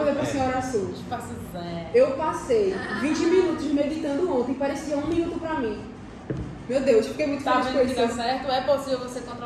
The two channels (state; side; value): identical; both; correlation 1.00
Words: para a senhora Sul. espaço zen. Eu passei 20 minutos meditando ontem, parecia 1 minuto para mim. Meu Deus, fiquei muito Tá feliz com vendo que dá isso. certo? É possível você